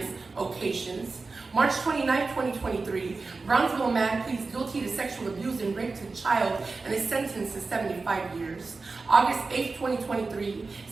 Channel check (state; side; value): quieter; left; 4.0 dB